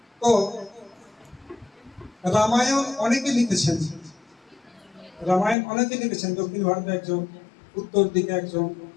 তো রামায়ণ অনেকে লিখেছেন, রামায়ণ অনেকে লিখেছেন, দক্ষিণ ভারতে একজন, উত্তর দিকে একজন,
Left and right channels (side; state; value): right; drops out; at 5.6 s